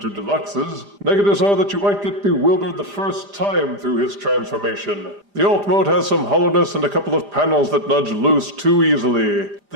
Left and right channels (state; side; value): late; left; 5.0 ms